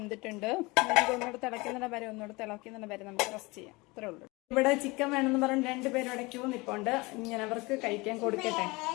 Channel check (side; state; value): right; quieter; 24.1 dB